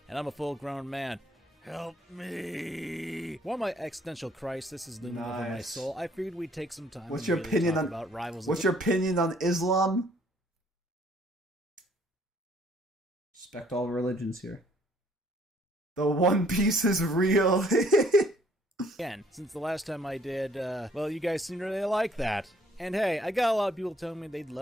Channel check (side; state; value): both; normal; correlation 0.62